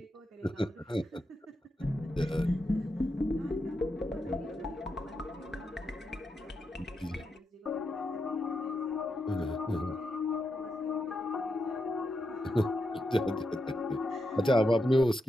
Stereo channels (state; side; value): normal; both; correlation 0.85